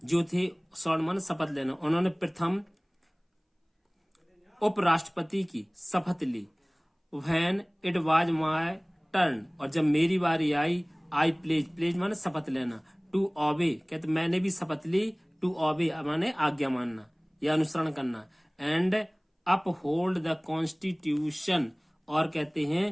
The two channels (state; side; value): identical; both; correlation 1.00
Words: जो थे, स्वर्ण माने शपथ लेना, उन्होंने प्रथम उपराष्ट्रपति की शपथ ली। When it was my turn, और जब मेरी बारी आई, आई प्लेज माने शपथ लेना, टू ओबे कहते मैंने भी शपथ ली, टू ओबे माने आज्ञा मानना या अनुसरण करना, एंड अपहोल्ड द कॉन्स्टिट्यूशन, और कहते